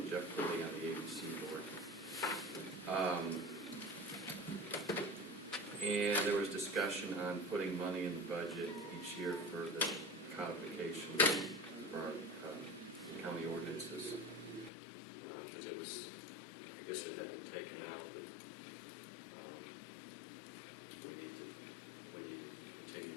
Jeff Pulley on the ABC board. And there was discussion on putting money in the budget each year for the codification for our county ordinances. Because it was, I guess it had been taken out, but we need to continue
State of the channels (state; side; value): drops out; right; at 14.7 s